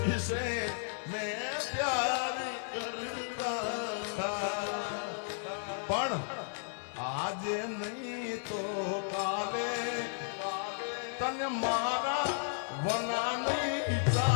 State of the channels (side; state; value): right; silent; 55 dB below the other